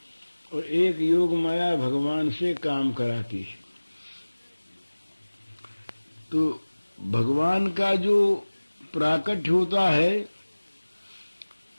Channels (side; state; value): both; inverted; correlation -1.00